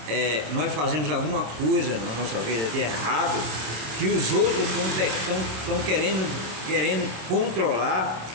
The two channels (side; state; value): left; late; 26 ms